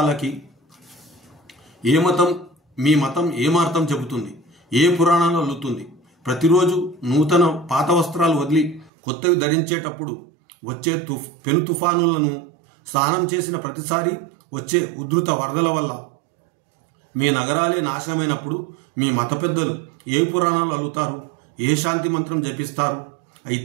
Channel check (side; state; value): left; drops out; at 8.9 s